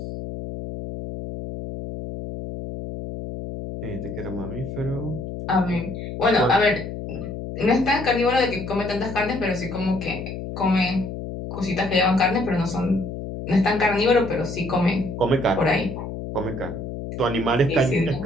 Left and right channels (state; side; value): noise; left; hum, 7 dB below the sound